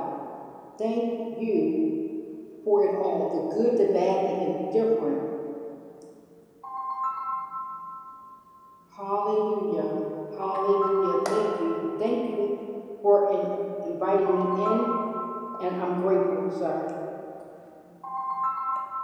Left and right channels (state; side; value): identical; both; correlation 1.00